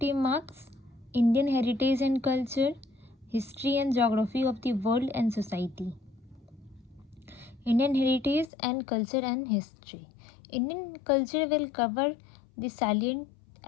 marks, Indian Heritage and Culture, History and Geography of the World and Society. Indian Heritage and Culture and History. Indian culture will cover the salient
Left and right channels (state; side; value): drops out; right; at 8.5 s